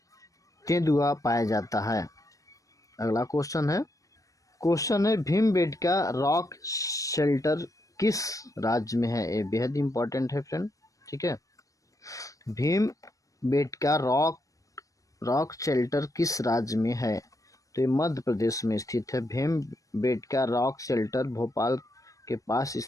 तेंदुआ पाया जाता है। अगला क्वेश्चन है भीमबेटका रॉक शेल्टर किस राज्य में है? ये बेहद इम्पोर्टेंट है फ्रेंड। ठीक है, भीमबेटका रॉक शेल्टर किस राज्य में है? तो ये मध्य प्रदेश में स्थित है। भीमबेटका रॉक शेल्टर भोपाल के पास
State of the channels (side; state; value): right; late; 0.16 ms